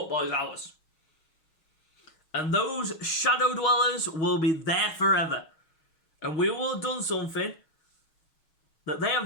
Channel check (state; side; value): late; right; 6.3 ms